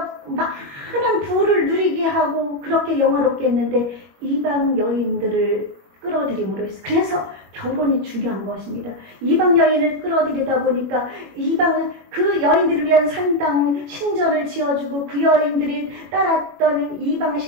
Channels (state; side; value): late; left; 21 ms